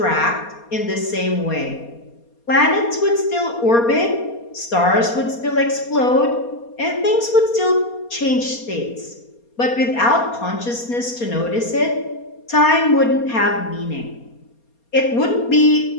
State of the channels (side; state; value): right; late; 4.3 ms